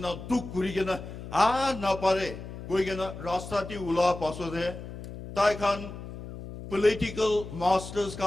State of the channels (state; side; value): noise; left; hum, 11 dB below the sound